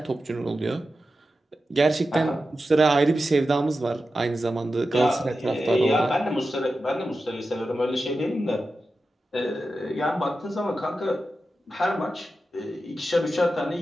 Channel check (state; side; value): normal; both; correlation 0.92